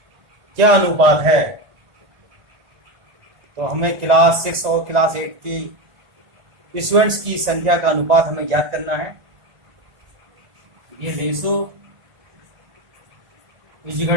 क्या अनुपात है। तो हमें क्लास 6 और क्लास 8 की स्टूडेंट्स की संख्या का अनुपात हमें ज्ञात करना है। ये ratio is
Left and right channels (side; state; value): left; late; 1.9 ms